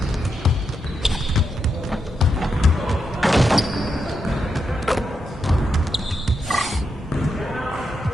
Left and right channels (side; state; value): both; normal; correlation 0.84